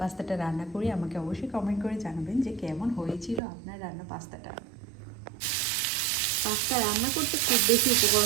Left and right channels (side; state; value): left; drops out; at 3.4 s